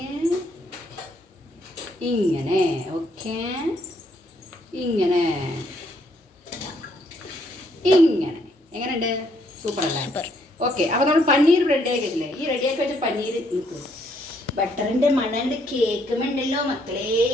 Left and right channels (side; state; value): both; normal; correlation 0.70